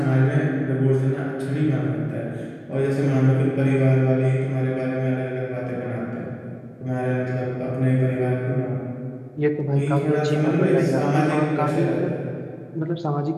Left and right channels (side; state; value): both; identical; correlation 1.00